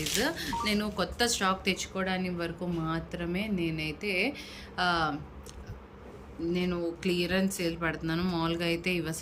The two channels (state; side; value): identical; both; correlation 1.00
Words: నేను కొత్త స్టాక్ తెచ్చుకోవడానికి వరకు మాత్రమే నేను క్లియరెన్స్ సేల్ పెడుతున్నాను. మామూలుగా అయితే ఇవి